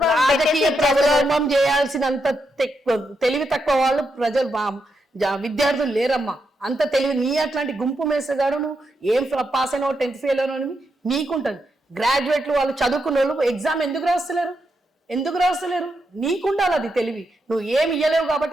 చేయాల్సి అంత తెలివి తక్కువ వాళ్ళు ప్రజలు విద్యార్థులు లేరమ్మా. అంత తెలివి నీ అట్లాంటి గుంపు మేసగాడు నువ్వు ఏం పాస్ అయినా 10th ఫెయిల్ అయినా నీకుంటది. గ్రాడ్యుయేట్లు వాళ్ళు చదువుకున్న వాళ్ళు ఎగ్జామ్ ఎందుకు రాస్తలేరు? నీకుండాలి అది తెలివి. నువ్వు ఏమి ఇయ్యలేవు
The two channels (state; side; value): normal; both; correlation 0.83